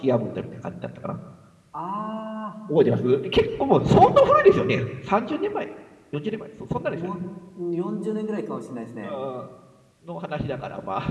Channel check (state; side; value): identical; both; correlation 1.00